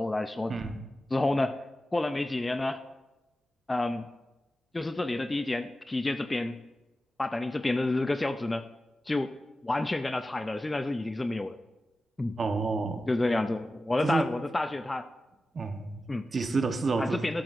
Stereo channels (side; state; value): both; normal; correlation 0.93